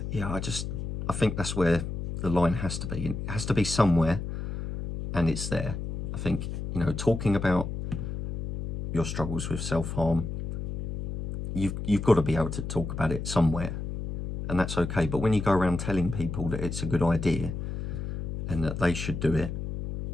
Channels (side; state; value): left; noise; hum, 4 dB below the sound